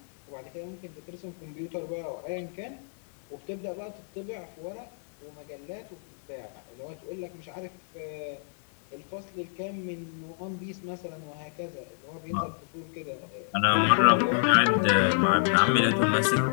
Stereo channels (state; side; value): silent; right; digital silence